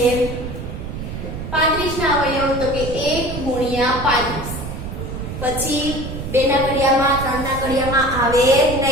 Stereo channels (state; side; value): noise; right; rumble, 7 dB below the sound